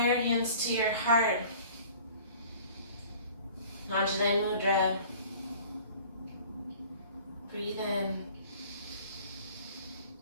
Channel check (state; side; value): inverted; both; correlation -0.48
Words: hands to your heart. Anjali Mudra. Breathe in.